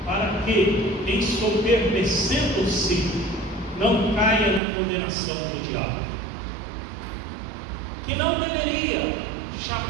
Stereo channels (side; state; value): left; drops out; at 4.6 s